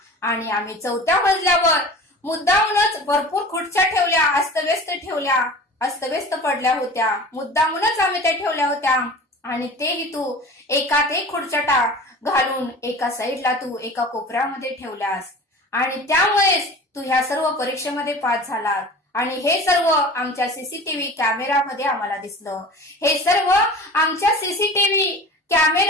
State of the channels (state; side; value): normal; both; correlation 0.39